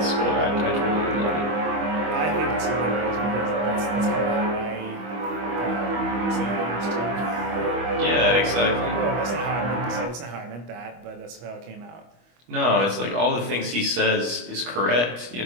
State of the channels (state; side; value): late; left; 25 ms